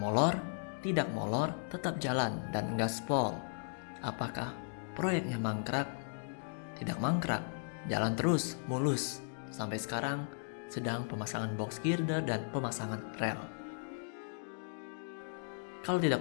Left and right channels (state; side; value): silent; right; digital silence